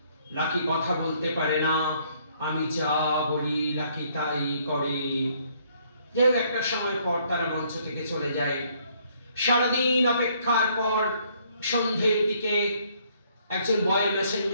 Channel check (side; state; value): both; inverted; correlation -0.66